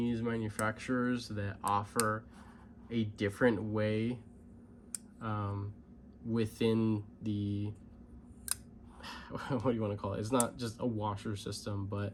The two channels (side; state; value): both; identical; correlation 1.00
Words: manufacturers that offer a different way within the, what do you want to call it? It's not just a washer system, but